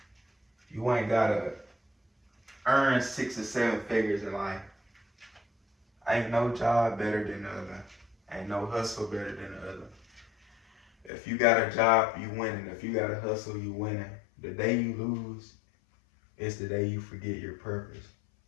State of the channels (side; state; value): right; drops out; at 11.1 s